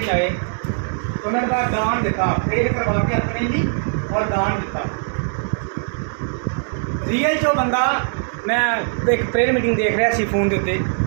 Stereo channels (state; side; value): silent; left; digital silence